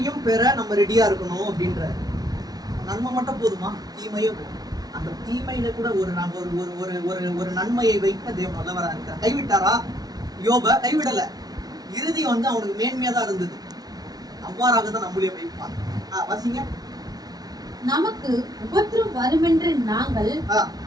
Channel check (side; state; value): left; late; 0.19 ms